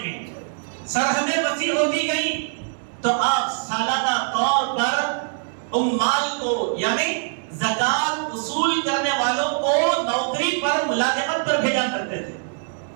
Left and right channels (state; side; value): silent; left; 63 dB below the other